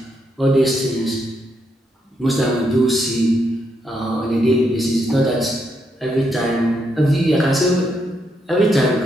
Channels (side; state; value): both; normal; correlation 0.79